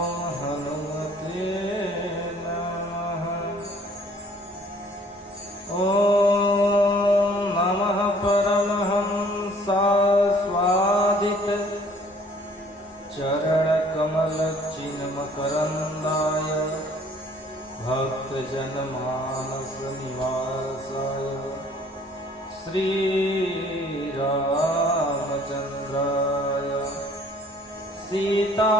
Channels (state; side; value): normal; both; correlation 0.56